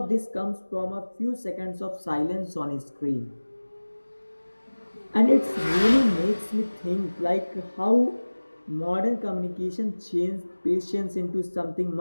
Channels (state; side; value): inverted; both; correlation -1.00